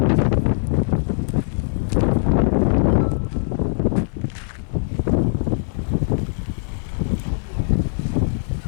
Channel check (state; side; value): silent; right; digital silence